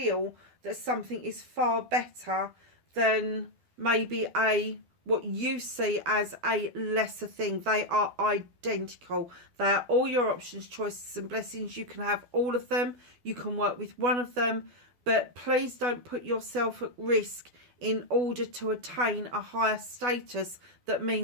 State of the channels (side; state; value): left; late; 12 ms